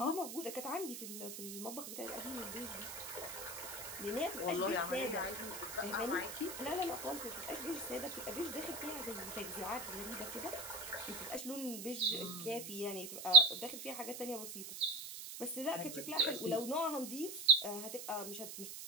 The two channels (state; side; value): noise; right; hiss, 9 dB below the sound